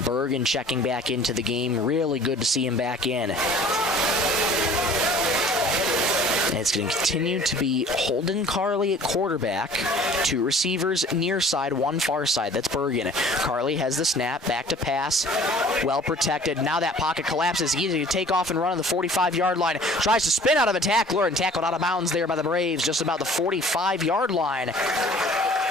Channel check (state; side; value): normal; both; correlation 0.49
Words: Bergen checking back into the game. Really good to see him back in. And it's going to continue to be Holden Carley at quarterback, 2 receivers near side, 1 far side. That's Bergen. Carley has the snap, back to pass, well protected. Now that pocket collapses. Easy to take off and run on the 45-yard line. Tries to spin out of a tackler and tackled out of bounds there by the Braves, just about the 45-yard line.